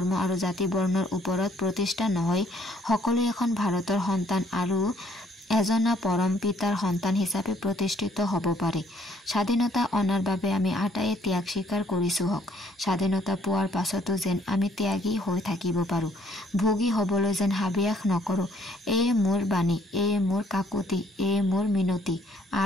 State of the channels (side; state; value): both; normal; correlation 0.64